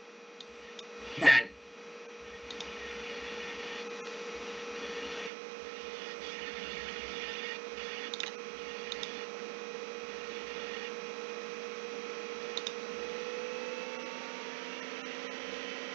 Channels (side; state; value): left; drops out; at 5.3 s